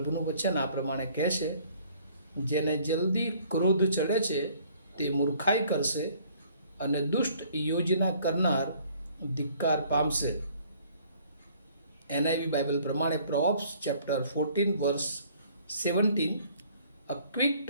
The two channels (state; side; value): inverted; both; correlation -0.58